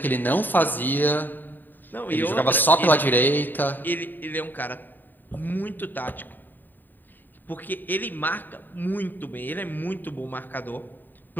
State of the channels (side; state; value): right; late; 0.090 ms